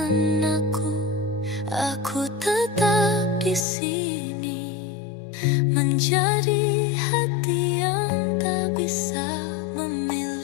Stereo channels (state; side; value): drops out; right; at 3.7 s